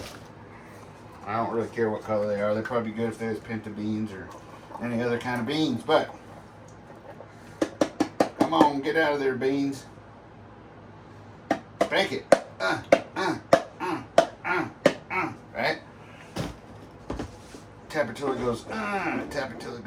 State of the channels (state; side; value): identical; both; correlation 1.00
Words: I don't really care what color they are. They're probably good if there's pinto beans or any other kind of beans, but come on, get out of there, beans. Spank it. Right? Tap it till it goes, tap it till it